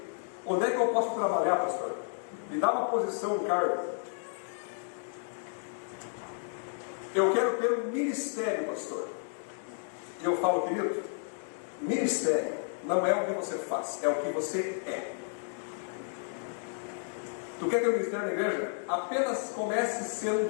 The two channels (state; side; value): silent; right; 57 dB below the other